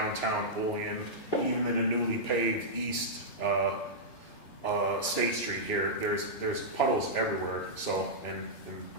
Olean, even in the newly paved east State Street here. There's puddles everywhere. So, and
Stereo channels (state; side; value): late; right; 2.9 ms